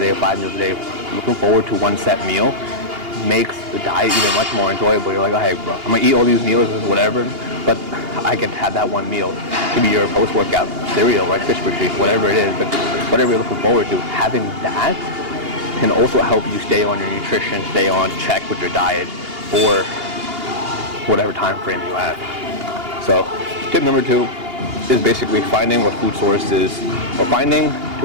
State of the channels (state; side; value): late; left; 2.8 ms